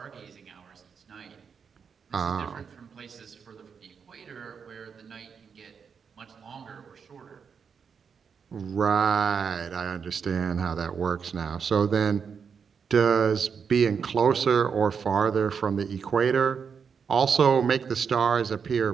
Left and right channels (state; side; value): quieter; left; 6.4 dB